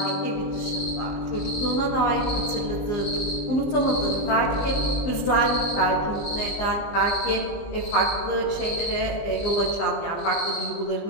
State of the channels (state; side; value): late; right; 19 ms